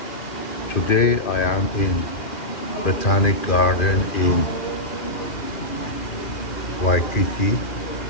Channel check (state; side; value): late; right; 2.4 ms